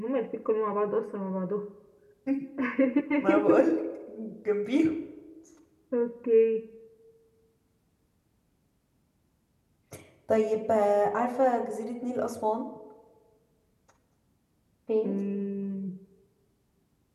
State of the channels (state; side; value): identical; both; correlation 1.00